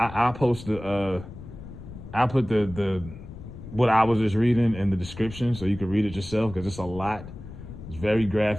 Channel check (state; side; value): noise; left; rumble, 13 dB below the sound